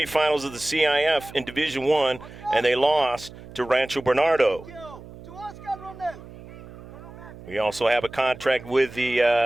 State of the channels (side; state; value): right; noise; hum, 17 dB below the sound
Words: of the CIF in Division I, and they lost to Rancho Bernardo. We also have a contract with the